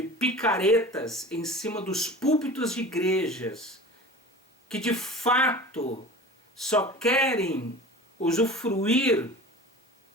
picaretas em cima dos púlpitos de igrejas, que de fato só querem usufruir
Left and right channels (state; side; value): normal; both; correlation 0.37